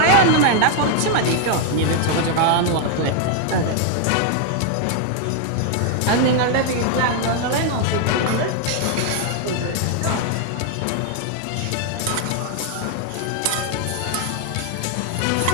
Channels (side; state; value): both; different; correlation 0.00